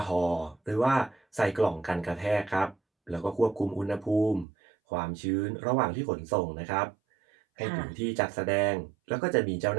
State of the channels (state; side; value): drops out; left; at 4.5 s